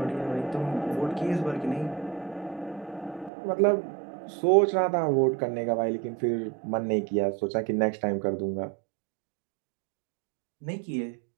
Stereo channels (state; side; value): drops out; left; at 3.3 s